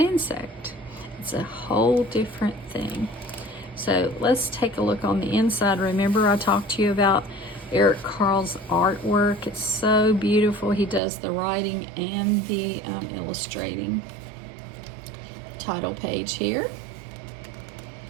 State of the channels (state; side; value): drops out; left; at 11.0 s